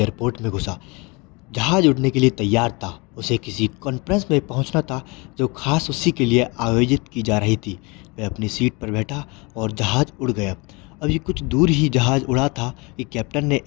में घुसा। जहाज उड़ने के लिए तैयार था। उसे किसी कॉन्फ्रेंस में पहुंचना था जो खास उसी के लिए आयोजित की जा रही थी। वह अपनी सीट पर बैठा और जहाज उड़ गया। अभी कुछ दूर ही जहाज उड़ा था कि कैप्टन ने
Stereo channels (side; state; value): right; quieter; 27.7 dB